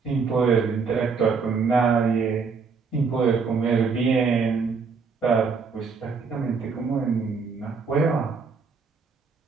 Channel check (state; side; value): quieter; left; 5.1 dB